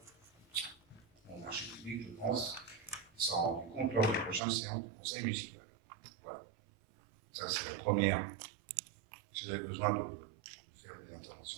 au marché public, je pense, sera rendu compte lors de la prochaine séance du conseil municipal. Voilà. Ça, c'est la première. Si vous avez besoin de faire des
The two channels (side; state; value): left; drops out; at 4.4 s